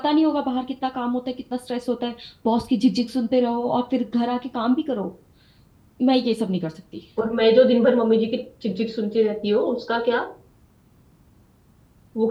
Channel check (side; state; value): both; identical; correlation 1.00